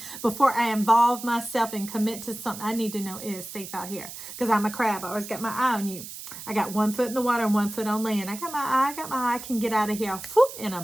Before I involve myself and commit to something, I need to know it is safe out here because I'm a crab. I always got my eye on you. I got 1 foot in the water and 1 foot on land. I got my eye. I can get out of here whoop, in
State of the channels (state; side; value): noise; right; hiss, 11 dB below the sound